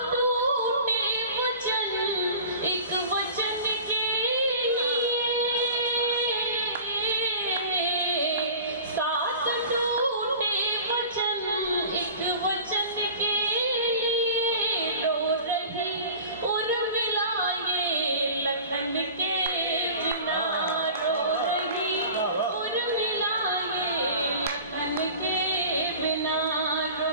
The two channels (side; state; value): both; inverted; correlation -0.40